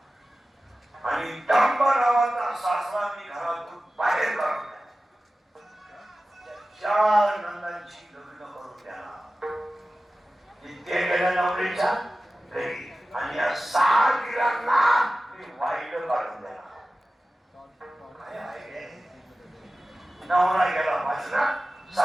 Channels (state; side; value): normal; both; correlation 0.95